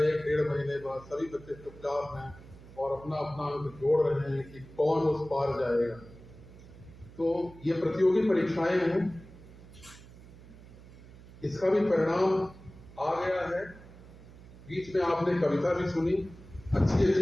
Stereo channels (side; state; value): right; noise; hum, 19 dB below the sound